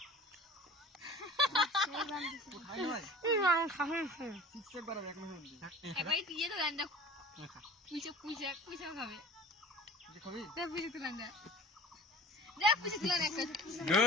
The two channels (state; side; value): normal; both; correlation 0.43